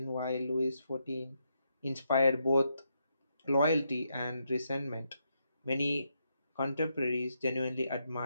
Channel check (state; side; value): inverted; both; correlation -0.80